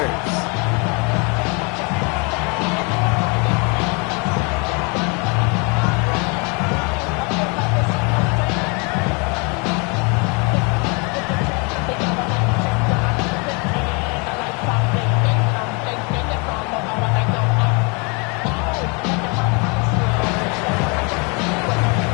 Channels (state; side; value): quieter; right; 32.2 dB